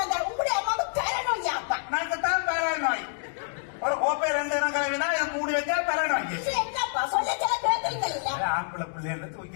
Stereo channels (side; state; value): right; silent; 60 dB below the other